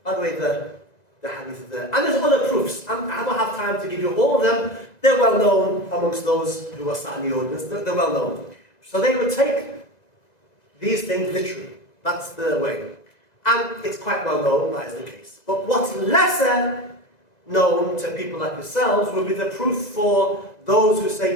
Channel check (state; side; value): late; right; 2.0 ms